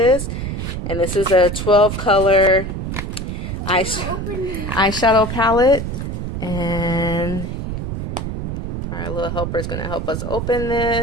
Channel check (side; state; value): right; noise; rumble, 4 dB below the sound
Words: And this is a 12 color eyeshadow palette. And our little helper is going to help us open